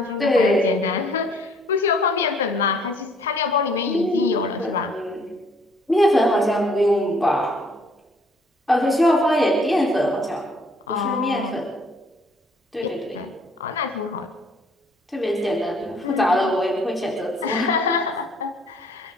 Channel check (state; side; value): normal; both; correlation 0.61